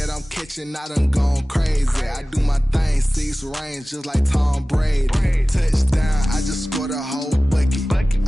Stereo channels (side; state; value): both; normal; correlation 0.97